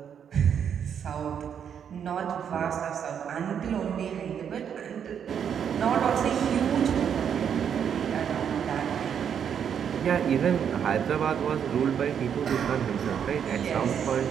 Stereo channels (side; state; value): left; quieter; 8.1 dB